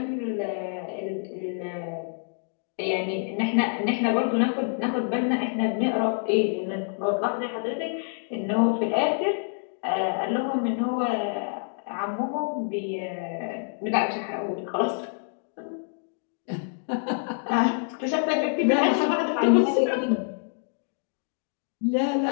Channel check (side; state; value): right; silent; 60 dB below the other